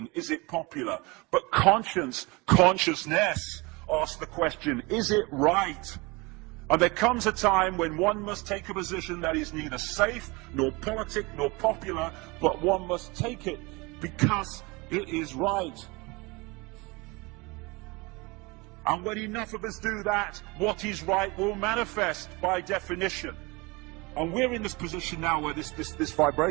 is it popular? But consciousness asks the question, is it right? And there comes a time when one must take a position that is neither safe, nor politic, nor popular, but one must take it because it is right. And when enough of us do that, what is right will manifest by definition. And we're in this position now where this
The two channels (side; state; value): left; quieter; 25.7 dB